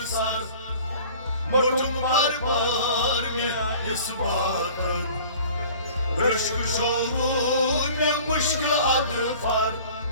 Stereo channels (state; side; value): inverted; both; correlation -0.46